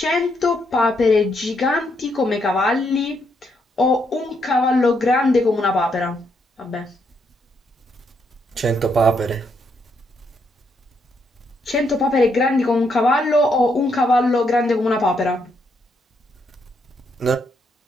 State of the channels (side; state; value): both; normal; correlation 0.76